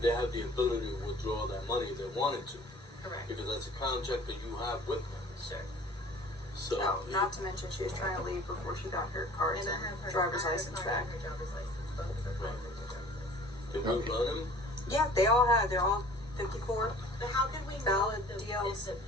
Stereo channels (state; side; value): normal; both; correlation 0.48